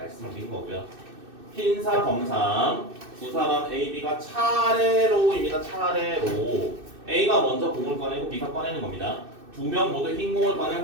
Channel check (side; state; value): left; late; 2.6 ms